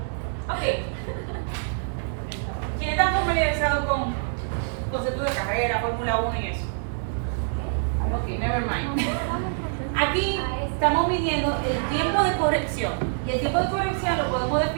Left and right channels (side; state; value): left; silent; 61 dB below the other